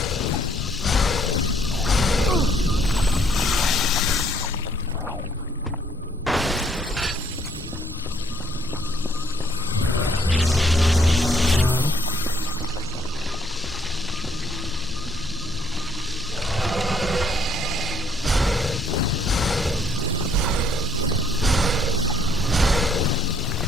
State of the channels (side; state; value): both; normal; correlation 0.67